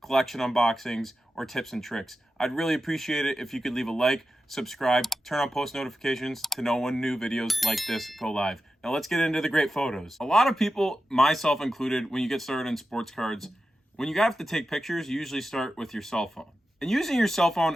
collection unboxings, or tips and tricks. I'd really appreciate it if you could leave a like, subscribe, turn on post notifications to know when new videos like this go live. Now let's get into the great photos. A lot of people, myself included, when you get started in sports cards, when you have to take pictures, you usually start with your cell phone. And using your cell phone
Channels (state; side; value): normal; both; correlation 0.91